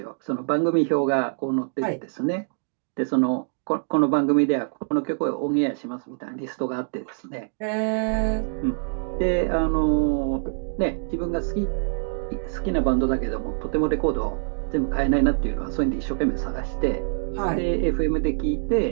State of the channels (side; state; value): left; silent; digital silence